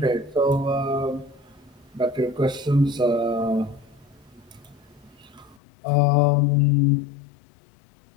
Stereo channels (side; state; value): right; drops out; at 5.6 s